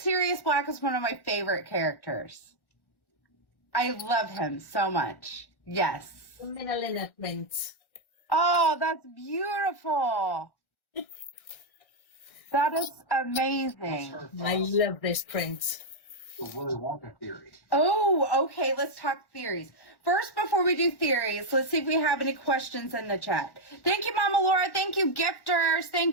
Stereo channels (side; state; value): right; late; 1.4 ms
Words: Black is one of my favorite characters. I love him so much. Yes. The Minalina print. Oh, that's beautiful. That is amazing. I love this print. The Willy Wonka theory. Oh, okay. Let's talk theories. First, before we do theories, let's see if we have any questions in the chat. Thank you, Mama Laura. Thank you, gifters.